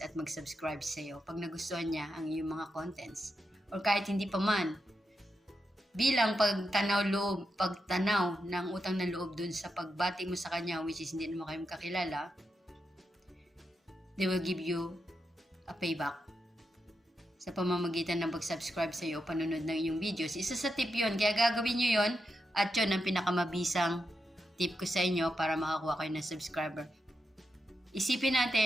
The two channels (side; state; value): both; normal; correlation 0.86